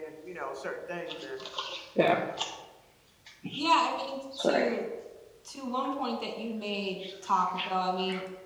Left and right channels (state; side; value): identical; both; correlation 1.00